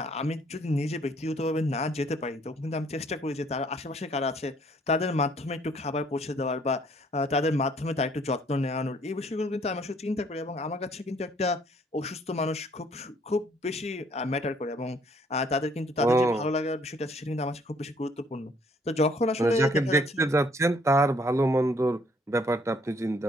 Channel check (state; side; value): normal; both; correlation 0.63